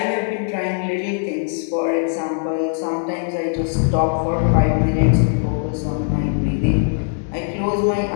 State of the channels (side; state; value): right; silent; 57 dB below the other